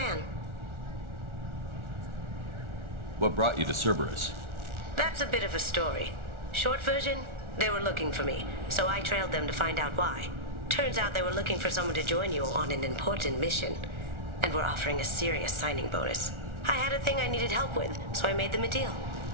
What brought you to Cerberus? That's a bit of a story. Short version, they were looking for me, so I trailed them to find out why. Turns out they were looking for someone to join you on an important mission, and were offering a serious signing bonus. I had a thing I needed help with, so I made them a deal.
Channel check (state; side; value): late; left; 1.4 ms